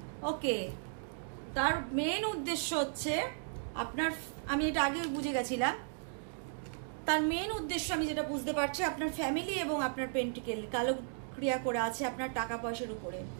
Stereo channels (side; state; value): left; silent; digital silence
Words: ওকে, তার মেন উদ্দেশ্য হচ্ছে আপনার, আমি এটা আগে বুঝে গেছিলাম, তার মেন উদ্দেশ্য আমি যেটা বুঝতে পারছি, আপনার ফ্যামিলি এবং আপনার পেন্টিকেল কালো ক্রিয়া করে আছে আপনার টাকা পয়সার উপরে।